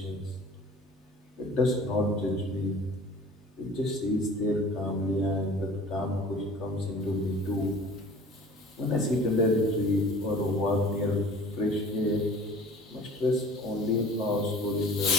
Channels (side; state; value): both; normal; correlation 0.46